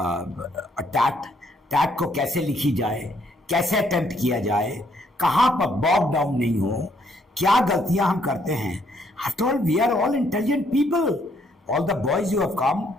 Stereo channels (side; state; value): both; normal; correlation 0.70